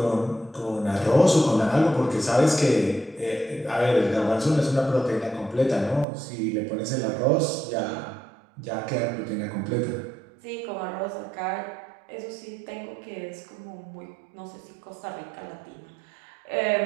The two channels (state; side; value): drops out; left; at 6.1 s